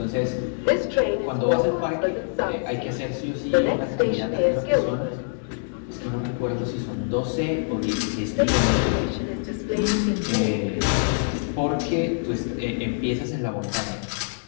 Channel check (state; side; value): silent; right; 62 dB below the other